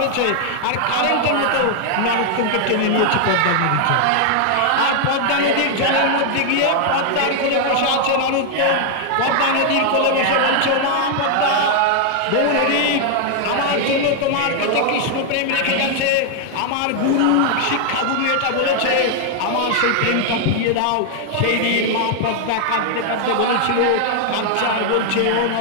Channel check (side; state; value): both; different; correlation 0.00